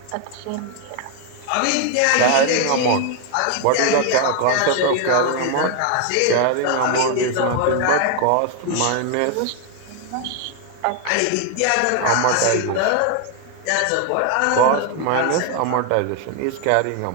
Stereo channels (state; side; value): different; both; correlation 0.01